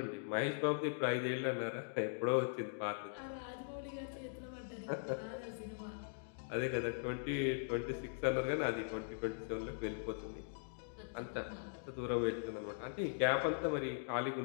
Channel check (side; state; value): right; silent; digital silence